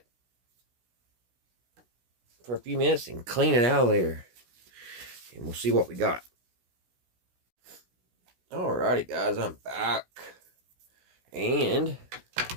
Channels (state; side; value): late; left; 16 ms